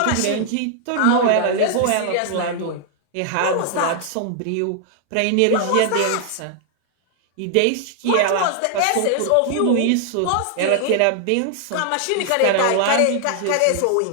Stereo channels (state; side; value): different; both; correlation 0.00